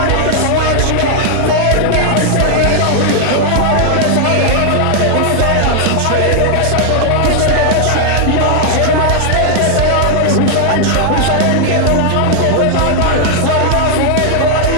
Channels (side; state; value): both; different; correlation 0.00